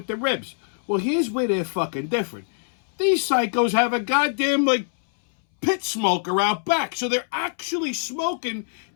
the ribs. Well, here's where they're fucking different. These psychos have a goddamn, pit smoker out back. So they're actually smoking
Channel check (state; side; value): silent; right; 63 dB below the other